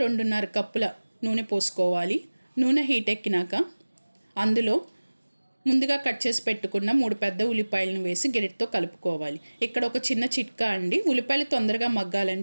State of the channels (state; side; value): inverted; both; correlation -1.00